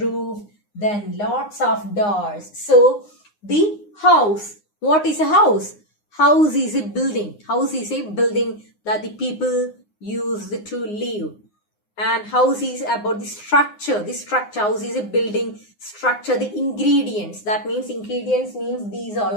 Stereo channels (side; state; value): right; late; 9.7 ms